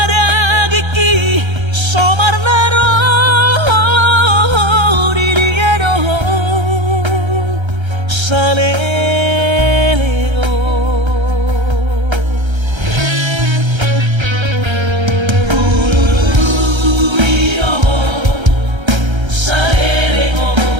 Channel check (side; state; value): left; late; 1.3 ms